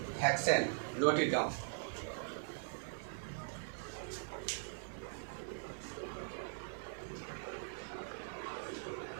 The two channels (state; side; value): silent; left; 50 dB below the other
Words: Hexane, note it down.